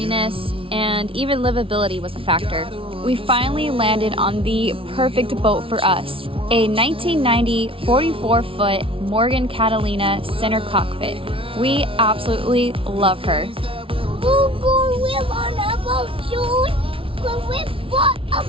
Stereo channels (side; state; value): left; late; 0.26 ms